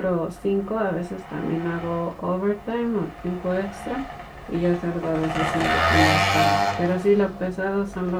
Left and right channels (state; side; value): identical; both; correlation 1.00